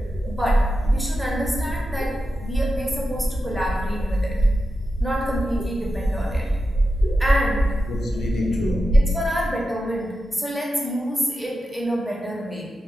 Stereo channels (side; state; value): both; normal; correlation 0.90